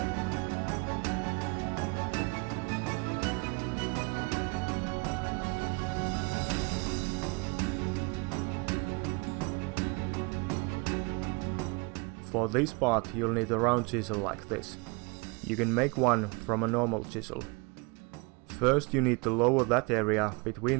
For this part you'll need a round chisel like this. You can make one from a normal chisel. First you need to lower that area between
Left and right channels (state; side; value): quieter; left; 29.5 dB